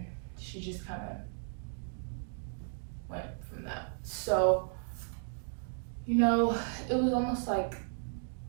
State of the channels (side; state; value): left; silent; digital silence